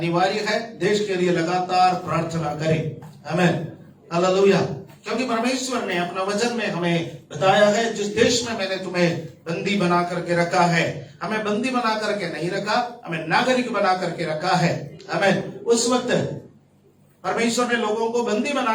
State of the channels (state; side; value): identical; both; correlation 1.00